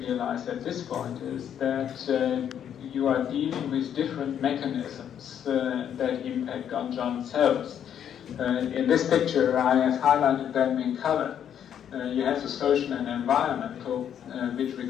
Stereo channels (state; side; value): quieter; right; 9.2 dB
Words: at this point is that you are dealing with different mechanisms that impact on John's health. In this picture, I have highlighted them in color. You have the social and environmental, which